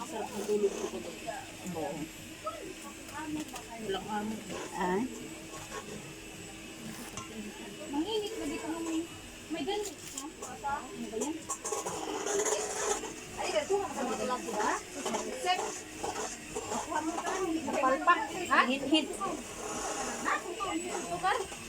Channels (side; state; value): both; identical; correlation 1.00